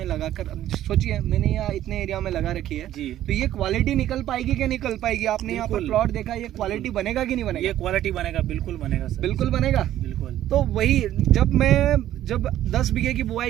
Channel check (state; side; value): quieter; left; 12.6 dB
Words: लगाकर, अब सोचिए मैंने यहाँ इतने एरिया में लगा रखी है जी, तो ये क्वालिटी निकल पाएगी कि निकल पाएगी? आपने यहाँ पर प्लॉट देखा, ये क्वालिटी बनेगा कि नहीं बनेगा? ये क्वालिटी बनेगा, बिल्कुल बनेगा सर, बिल्कुल बनेगा, बिल्कुल। तो वही जब 10 बीघे की